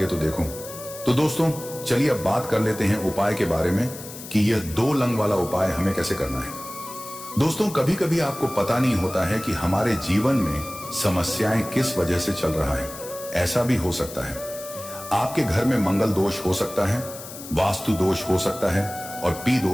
तो देखो। तो दोस्तों चलिए अब बात कर लेते हैं उपाय के बारे में कि यह 2 लंग वाला उपाय हमें कैसे करना है। दोस्तों कभी कभी आपको पता नहीं होता है कि हमारे जीवन में समस्याएं किस वजह से चल रहा है। ऐसा भी हो सकता है आपके घर में मंगल दोष हो सकता है, वास्तु दोष हो सकता है और पी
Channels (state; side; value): noise; left; hiss, 13 dB below the sound